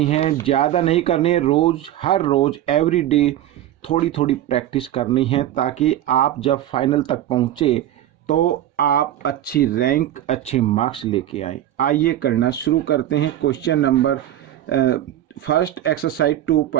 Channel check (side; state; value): left; quieter; 12.5 dB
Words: है, ज़्यादा नहीं करनी है। हर रोज़ एवरी डे थोड़ी थोड़ी प्रैक्टिस करनी है ताकि आप जब फाइनल तक पहुँचे तो आप अच्छी रैंक अच्छे मार्क्स लेके आए। आइए करना शुरू करते हैं। क्वेश्चन नंबर फर्स्ट एक्सरसाइज